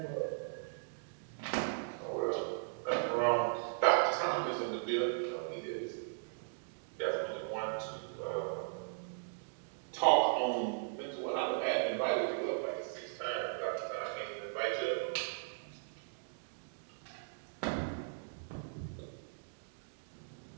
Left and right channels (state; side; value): silent; left; digital silence